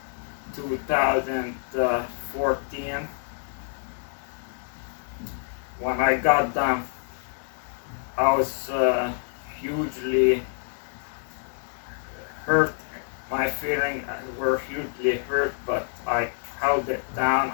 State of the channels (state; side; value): silent; right; 60 dB below the other